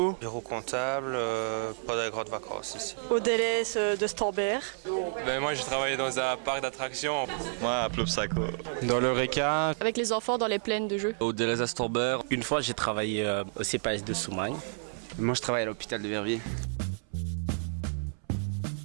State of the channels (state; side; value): silent; left; 58 dB below the other